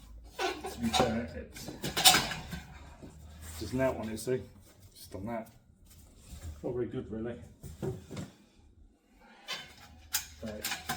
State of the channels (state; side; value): identical; both; correlation 1.00